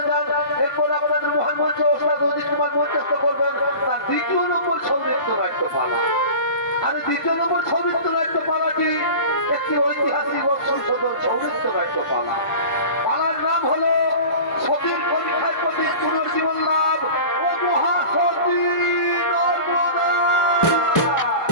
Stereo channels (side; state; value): right; late; 1.5 ms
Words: যান। এরপর আপনাদের মহান মঞ্চ ওস্তাদ অজিত কুমার মঞ্চস্থ করবেন তার দ্বিতীয় নম্বর সৌনৃত্য নাট্যপালা। আর দ্বিতীয় নম্বর সৌনৃত্য নাট্যপালাটি একটি ঐতিহাসিক ও সংশোধন সৌনৃত্য নাট্যপালা। পালার নাম হলো সতীর পরীক্ষার প্রতি পুনর্জীবন লাভ ও মহাসতী নর্মদা।